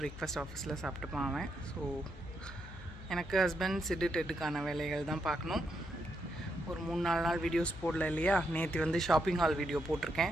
பிரேக்ஃபாஸ்ட் ஆஃபீஸில் சாப்பிட்டுப்பான் அவன். ஸோ எனக்கு ஹஸ்பண்ட் சிட்டு டெட்டுக்கான வேலைகள் தான் பார்க்கணும். ஒரு 3-4 நாள் வீடியோஸ் போடல இல்லையா? நேற்று வந்து ஷாப்பிங் ஹால் வீடியோ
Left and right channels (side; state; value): left; noise; hum, 14 dB below the sound